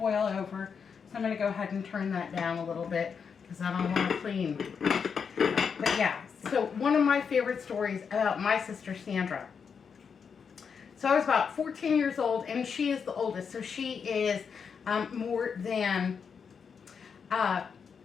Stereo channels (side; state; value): right; quieter; 6.3 dB